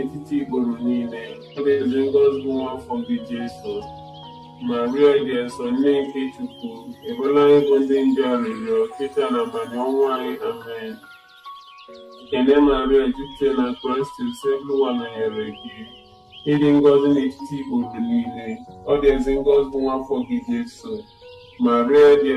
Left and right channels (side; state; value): both; identical; correlation 1.00